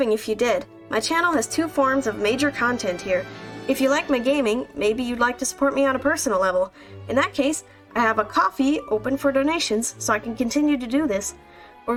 if you did. My channel has 2 forms of major content here. If you like my gaming, maybe you'd like to support me on a personal level. In that case, I have a Ko-fi open for donations so I can continue to do this. Or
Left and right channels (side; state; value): both; identical; correlation 1.00